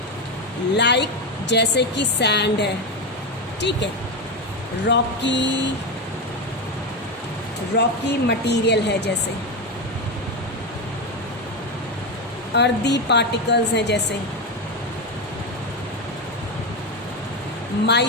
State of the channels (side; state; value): both; normal; correlation 0.12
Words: लाइक जैसे कि सैंड है, ठीक है, रॉकी मटेरियल है, जैसे अर्दी पार्टिकल्स हैं, जैसे